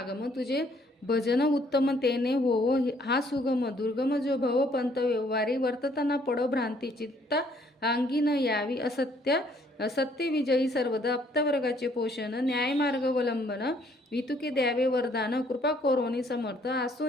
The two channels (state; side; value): normal; both; correlation 0.64